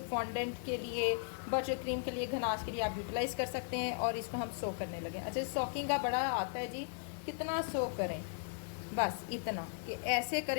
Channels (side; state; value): right; silent; digital silence